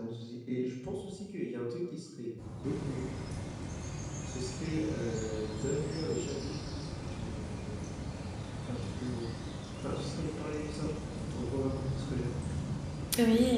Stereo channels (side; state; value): both; identical; correlation 1.00